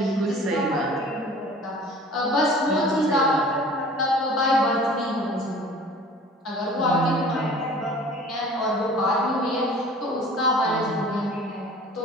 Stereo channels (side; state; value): both; normal; correlation 0.45